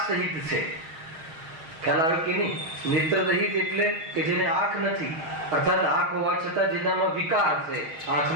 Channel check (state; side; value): late; left; 6.4 ms